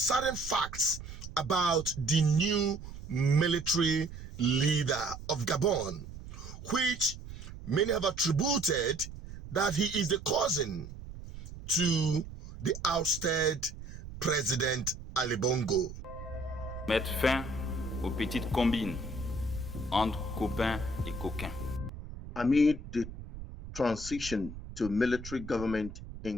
facts about the new military leader of Gabon, which many have attributed that he is the cousin to the ousted President Ali Bongo. Mettre fin aux petites combines entre copains et coquins. Amid the transition to military government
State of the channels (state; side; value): noise; right; rumble, 12 dB below the sound